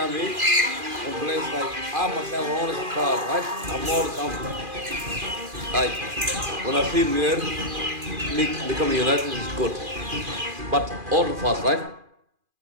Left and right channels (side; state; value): left; late; 2.4 ms